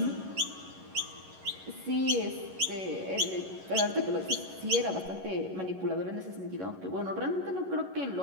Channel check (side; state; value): left; late; 11 ms